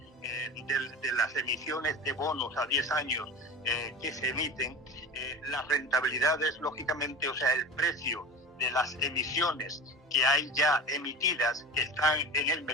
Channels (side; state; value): both; normal; correlation 0.31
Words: de las emisiones de bonos a 10 años que se emiten, las rentabilidades, lógicamente, o sea, el precio de las emisiones que hay ya emitidas, que están en el